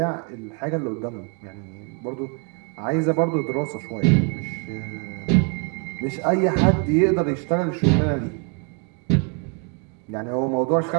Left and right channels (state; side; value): quieter; left; 34.3 dB